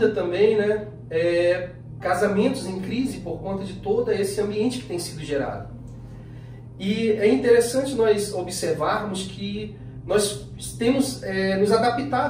também, né, casamentos em crise por conta de todo esse ambiente que tem sido gerado. E é interessante nós observarmos que nós temos nos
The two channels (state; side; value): identical; both; correlation 1.00